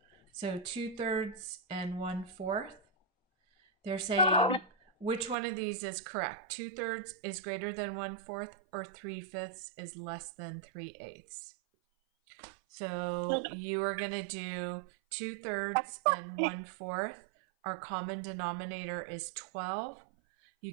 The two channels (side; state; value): left; drops out; at 5.4 s